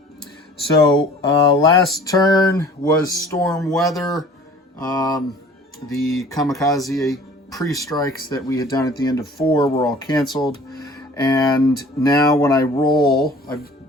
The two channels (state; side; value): normal; both; correlation 0.48